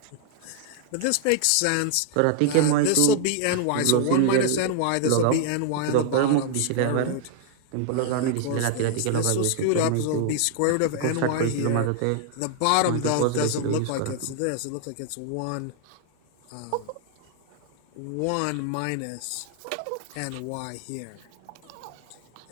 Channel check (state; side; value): different; both; correlation 0.00